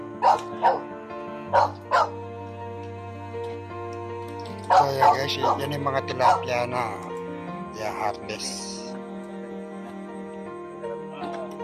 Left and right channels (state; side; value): identical; both; correlation 1.00